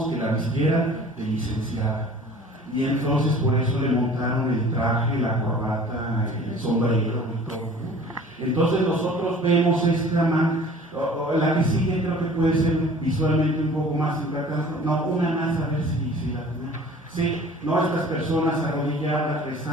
que la vistieran de licenciada. Y entonces por eso le montaron el traje, la corbata, el sombrero y todo. Entonces nosotros vemos la que sigue creo que puede ser visualmente un poco más impactante. No, una más a ver si la tenemos. Sí, no estas personas arrodilladas,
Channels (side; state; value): both; normal; correlation 0.47